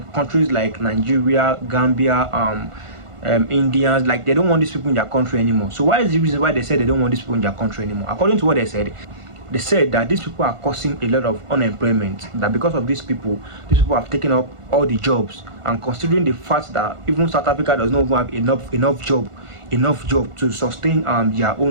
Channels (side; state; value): left; late; 1.5 ms